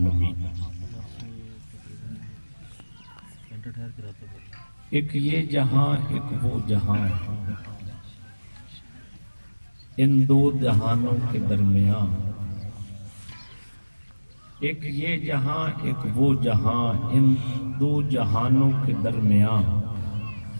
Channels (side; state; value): both; inverted; correlation -1.00